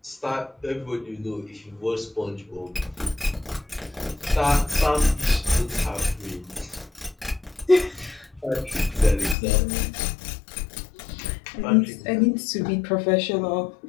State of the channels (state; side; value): drops out; right; at 9.3 s